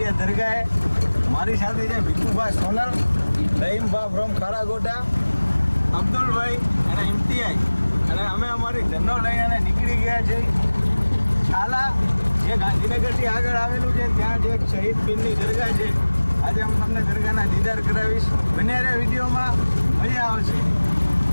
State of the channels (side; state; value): both; inverted; correlation -1.00